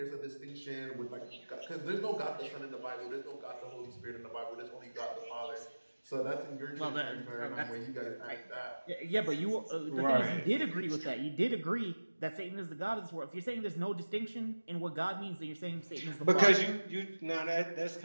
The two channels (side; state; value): both; inverted; correlation -1.00